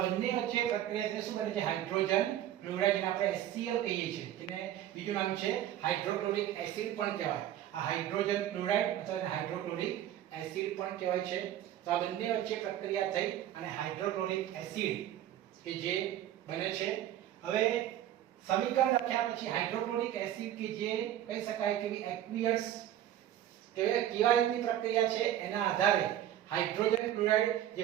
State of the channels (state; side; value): quieter; left; 11.9 dB